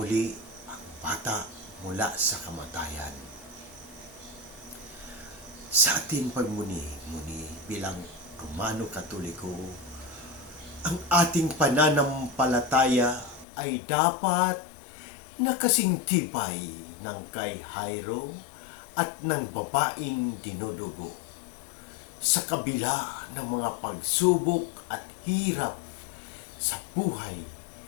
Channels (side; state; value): right; drops out; at 13.5 s